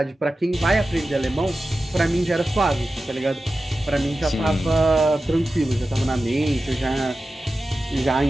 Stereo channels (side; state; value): both; normal; correlation 0.94